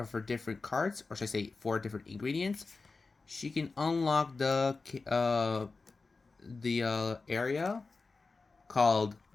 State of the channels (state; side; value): quieter; right; 4.0 dB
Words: her different cards, or should I say 4 different ingredients, she can unlock the area called